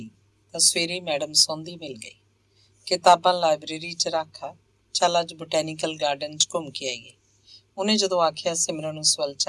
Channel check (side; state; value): both; identical; correlation 1.00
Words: ਤਾਂ ਸਵੇਰੇ ਮੈਡਮ ਸੌਂਦੀ ਮਿਲ ਗਈ। ਕਿਤਾਬਾਂ ਲਾਇਬ੍ਰੇਰੀ 'ਚ ਰੱਖਾ, ਚੱਲ ਅੱਜ ਬੋਟੈਨੀਕਲ ਗਾਰਡਨ 'ਚ ਘੁੰਮ ਕੇ ਆਈਏ। ਉਹਨੇ ਜਦੋਂ ਆਖਿਆ ਸਿਮਰਨ ਉਸ ਵੱਲ